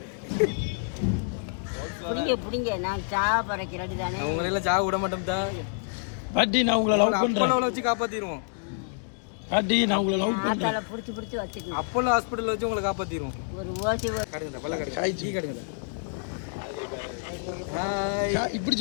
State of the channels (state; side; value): silent; right; digital silence